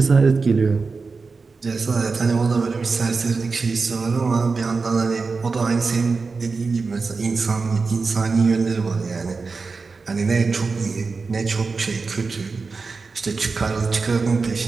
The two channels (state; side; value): quieter; left; 4.4 dB